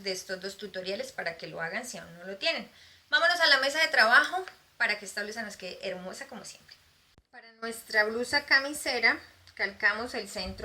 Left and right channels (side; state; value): both; identical; correlation 1.00